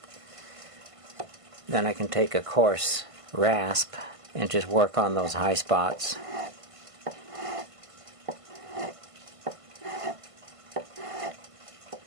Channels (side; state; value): left; late; 1.5 ms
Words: Then I can take a coarse rasp and just work on those high spots.